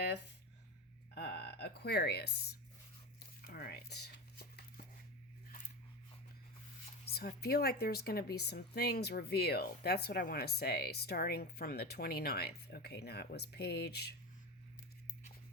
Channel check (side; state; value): both; normal; correlation 0.23